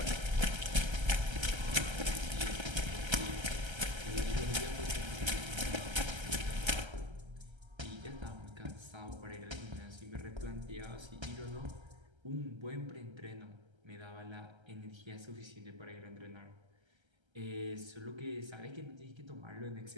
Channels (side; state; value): left; late; 1.3 ms